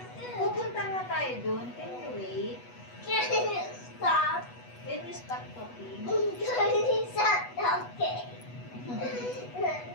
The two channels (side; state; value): right; late; 8.2 ms